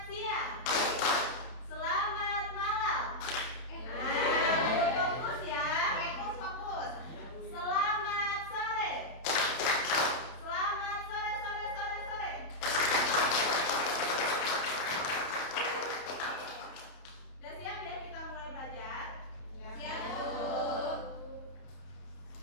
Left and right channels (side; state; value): right; late; 31 ms